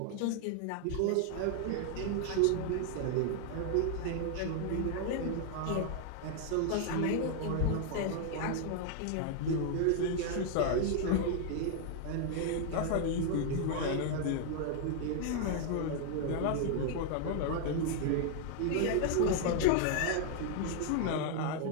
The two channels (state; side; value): different; both; correlation 0.00